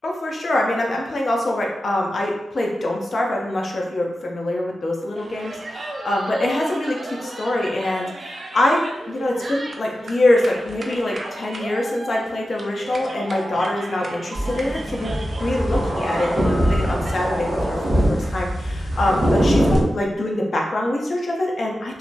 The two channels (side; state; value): both; normal; correlation 0.92